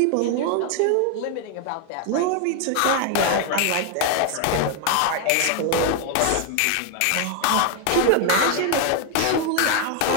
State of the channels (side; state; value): both; different; correlation 0.01